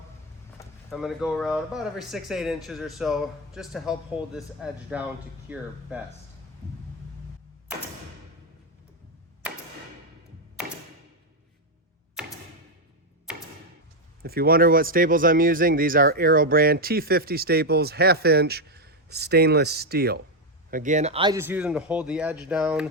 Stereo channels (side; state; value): both; normal; correlation 0.05